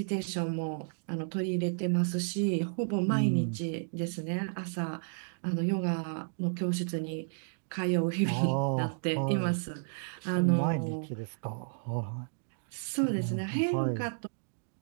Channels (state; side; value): silent; left; digital silence